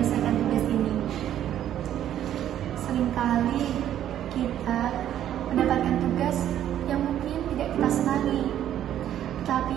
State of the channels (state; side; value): quieter; left; 11.1 dB